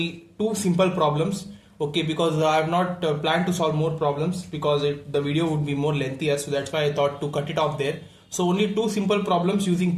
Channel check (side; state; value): both; identical; correlation 1.00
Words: two simple problems, okay, because I have not planned to solve more problems because the video would be more lengthier, so that's why I thought to cut it off there. So only two simple problems using